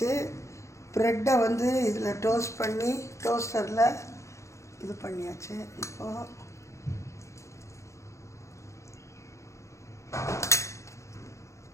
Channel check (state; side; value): late; right; 0.14 ms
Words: ப்ரெட்டை வந்து இதில் டோஸ்ட் பண்ணி டோஸ்டரில் இது பண்ணியாச்சு. இப்போது